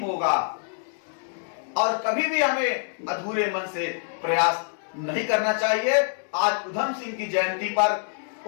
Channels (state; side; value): silent; right; digital silence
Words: और कभी भी हमें अधूरे मन से प्रयास नहीं करना चाहिए। आज उधम सिंह की जयंती पर